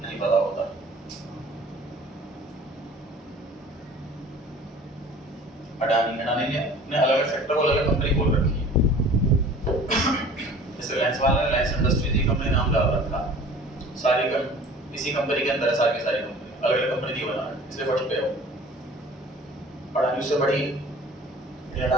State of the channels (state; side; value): normal; both; correlation 0.46